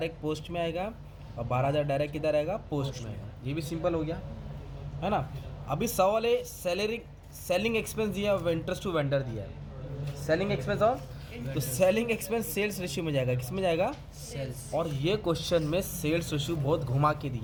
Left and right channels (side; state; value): both; identical; correlation 1.00